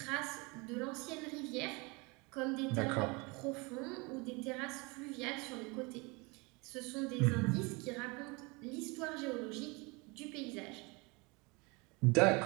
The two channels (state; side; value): quieter; left; 27.7 dB